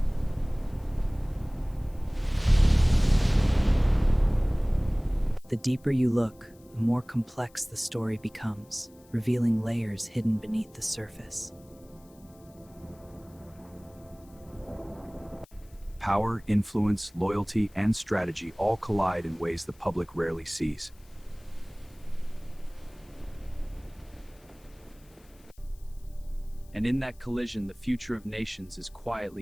The deeper you look, the more complex the story becomes, revealing layers hidden beneath the surface. Power, influence, loyalty, and strategy all collide in ways the public rarely sees. And in that collision, the future of nations is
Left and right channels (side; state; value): left; noise; hiss, 29 dB below the sound